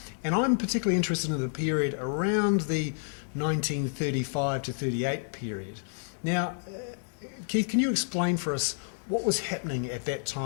and I'm particularly interested in the period around the 1935 to 38 period. Now, Keith, can you explain for us what was happening at that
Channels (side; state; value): right; silent; digital silence